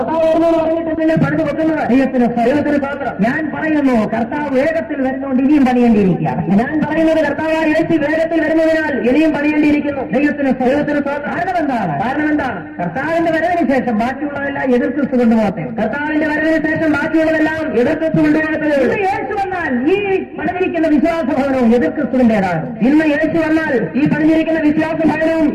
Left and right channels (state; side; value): identical; both; correlation 1.00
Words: വരുന്നതെന്ന് പറഞ്ഞിട്ട് നിങ്ങൾ പണിത് വെക്കുന്നത്. ദൈവത്തിന് സ്തോത്രം. ഞാൻ പറയുന്നു, കർത്താവ് വേഗത്തിൽ വരുന്നതുകൊണ്ട് ഇനിയും പണിയേണ്ടിയിരിക്കുകയാണ്. ഞാൻ പറയുന്നത്, കർത്താവ് യേശു വേഗത്തിൽ വരുന്നതിനാൽ ഇനിയും പണിയേണ്ടിയിരിക്കുന്നു. ദൈവത്തിന് സ്തോത്രം. കാരണം എന്താണ്? കർത്താവിന്റെ വരവിന് ശേഷം ബാക്കിയുള്ളതെല്ലാം എതിർക്രിസ്തു കൊണ്ടുപോകട്ടെ. ഇന്ന് യേശു വന്നാൽ ഈ പണിഞ്ഞിരിക്കുന്ന വിശ്വാസഭവനവും എതിർക്രിസ്തുവിന്റേതാണ്.